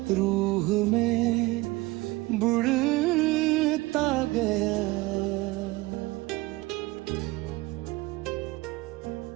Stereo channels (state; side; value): quieter; left; 20.9 dB